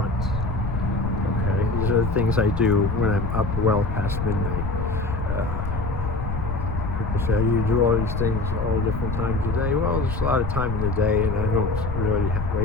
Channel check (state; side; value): noise; left; rumble, 4 dB below the sound